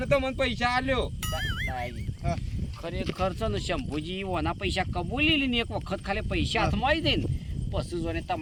તો મને પૈસા આલ્યો હા. ખરેખર છે ને શંભુજી ઓના પૈસા કબૂલી લઈને એક વખત ખાલી પૈસા હાથમાં આવી જાય ને પછી જોને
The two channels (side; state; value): both; identical; correlation 1.00